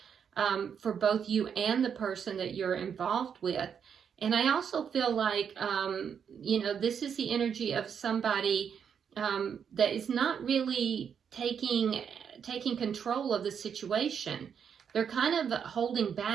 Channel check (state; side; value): quieter; left; 7.5 dB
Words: for both you and the person that you're involved with. And I also feel like, you know, this is the energy of somebody that is not really taking control of the situation. They're kind of holding